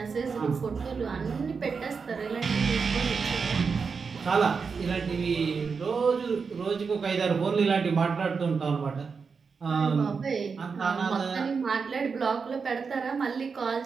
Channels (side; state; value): left; quieter; 5.3 dB